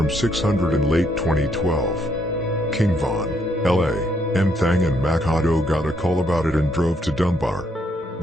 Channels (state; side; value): normal; both; correlation 0.73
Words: 600 in late 2012. King Von, L.A.M. Thang and Makato got a call about it and drove to Dunbar.